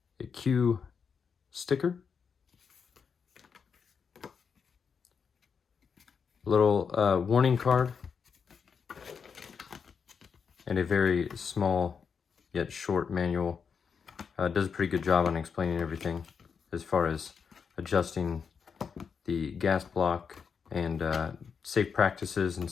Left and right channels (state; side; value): quieter; right; 6.2 dB